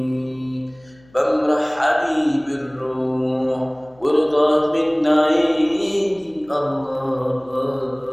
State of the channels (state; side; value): noise; left; hum, 29 dB below the sound